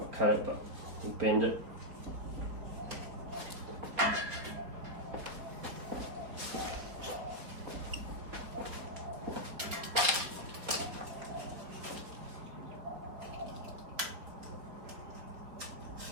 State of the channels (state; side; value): late; left; 4.5 ms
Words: cut it, but we'll bend it.